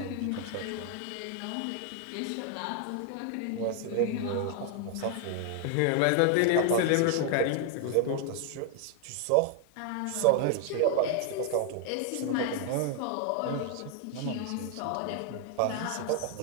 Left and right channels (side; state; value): both; different; correlation 0.00